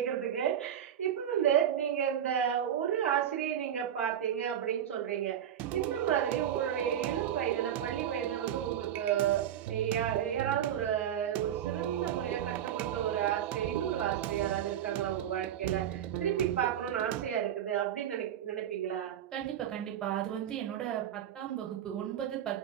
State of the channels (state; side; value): quieter; left; 10.1 dB